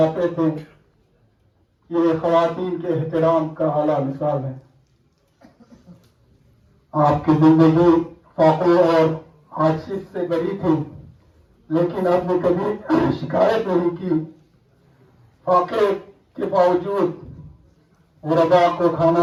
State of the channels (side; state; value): both; identical; correlation 1.00